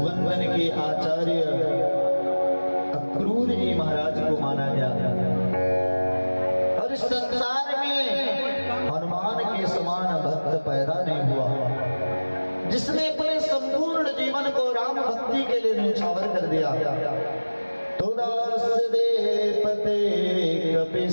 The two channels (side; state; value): both; inverted; correlation -1.00